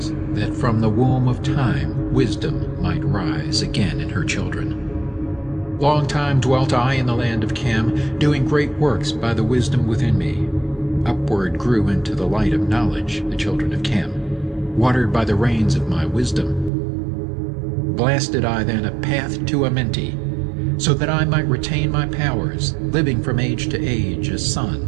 that from the womb of time wisdom might rise again in her children. Long time dwelt I in the land of Cam, doing great works by the wisdom within me. Upward grew into the light of knowledge the children of Cam, watered by the rains of my wisdom. Blasted I then a path to Amenti, so that I might retain my powers, living from age to age as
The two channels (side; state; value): left; drops out; at 16.7 s